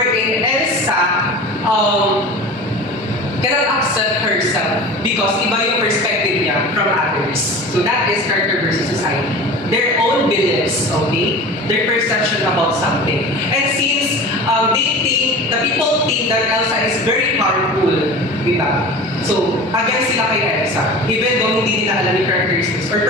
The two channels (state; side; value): normal; both; correlation 0.36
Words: Elsa cannot accept herself because iba yung perspective niya from others. So that is character versus society. Their own beliefs, okay? Their perception about something. And since the people think that Elsa is very powerful, diba? So, against sila kay Elsa, even though hindi nila alam yung characteristics or